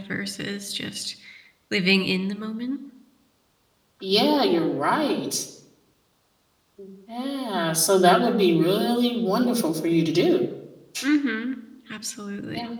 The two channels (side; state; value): both; identical; correlation 1.00